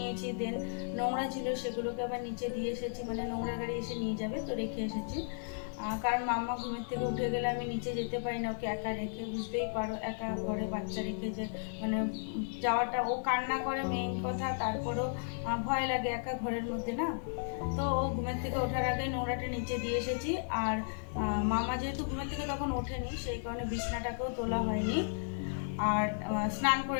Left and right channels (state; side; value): silent; right; 55 dB below the other